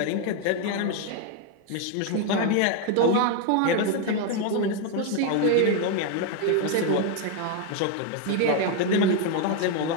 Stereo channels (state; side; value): different; both; correlation 0.01